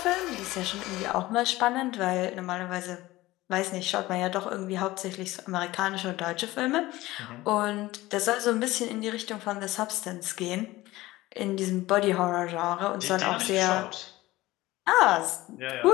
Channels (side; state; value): right; quieter; 18.2 dB